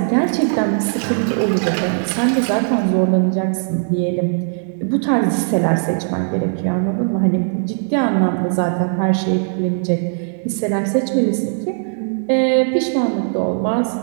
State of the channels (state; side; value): silent; left; digital silence